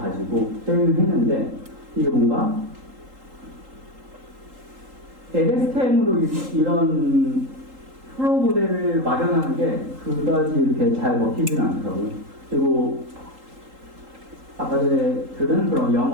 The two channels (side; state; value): left; late; 3.8 ms